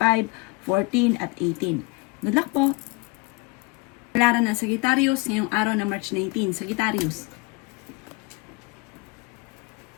14 at 18. Good luck po! Palaran ng Sagittarius ngayong araw ng March 19, Sagittarius.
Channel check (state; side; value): quieter; right; 25.7 dB